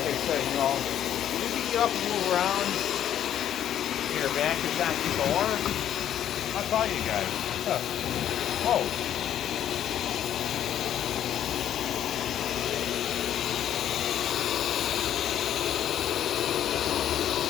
I said, you know, you can get up and move around, your back is not sore. I'll tell you guys. Whoa.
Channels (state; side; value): quieter; right; 10.7 dB